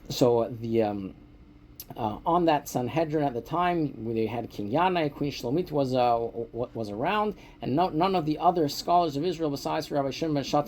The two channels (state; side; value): identical; both; correlation 1.00